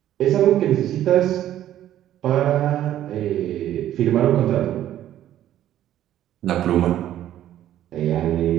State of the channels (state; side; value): quieter; left; 12.1 dB